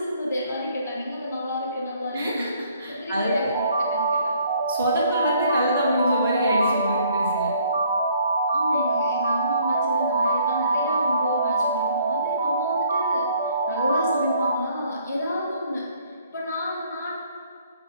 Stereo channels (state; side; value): inverted; both; correlation -0.63